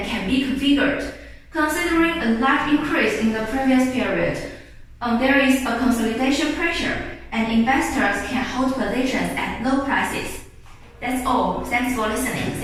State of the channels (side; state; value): both; identical; correlation 1.00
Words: can be configured. Considering a large increase in the previous period, there is a consolidation pressure, and investors can hold positions at low prices. That's all. Thanks for listening.